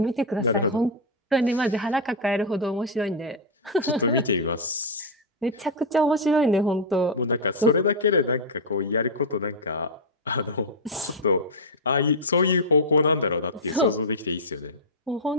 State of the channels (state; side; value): normal; both; correlation -0.02